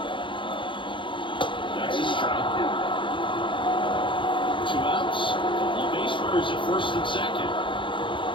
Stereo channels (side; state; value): right; late; 0.24 ms